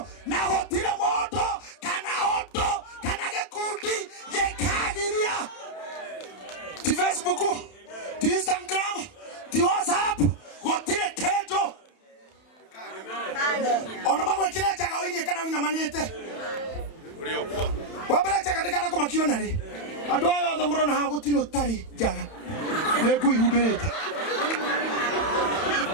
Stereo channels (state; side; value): late; right; 31 ms